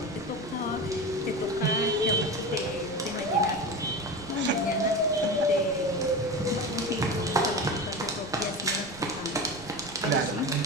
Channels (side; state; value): right; noise; rumble, 18 dB below the sound